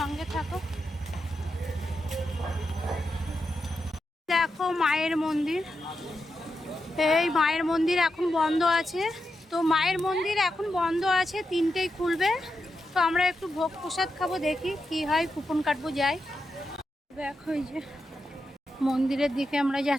থাকো। দেখো মায়ের মন্দির, এই মায়ের মন্দির এখন বন্ধ আছে। তো মায়ের মন্দির এখন বন্ধ আছে, 3টেই খুলবে। তো আমরা একটু ভোগ প্রসাদ খাবো, দেখি কি হয়, কুপন কাটবো, যাই। দেখো এই যে মন্দিরের দিকে আমরা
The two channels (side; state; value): both; normal; correlation 0.87